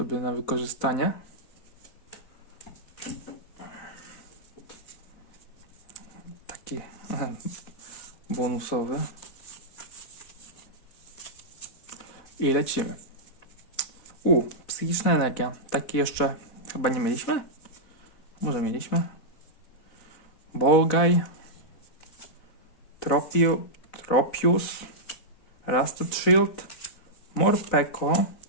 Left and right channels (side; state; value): right; late; 4.1 ms